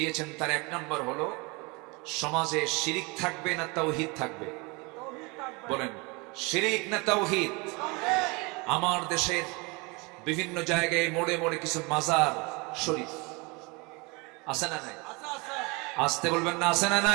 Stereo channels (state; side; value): quieter; left; 27.7 dB